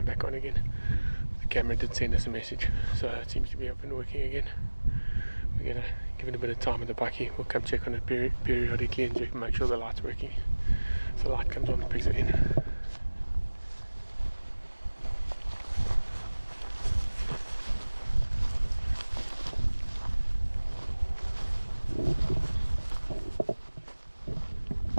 back on again. The camera did send us a message, so it seems to be up and working again. We're gonna give it a bit of time with the bucky. We'll come check on it periodically and check, make sure the light's working. So the light comes on, the pigs are in.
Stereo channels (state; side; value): inverted; both; correlation -1.00